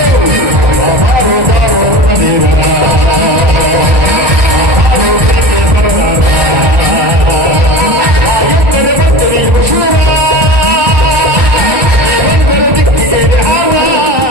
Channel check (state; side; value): late; left; 1.2 ms